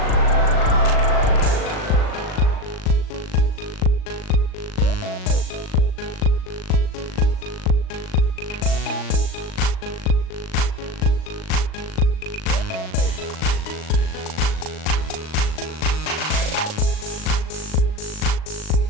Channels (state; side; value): late; right; 38 ms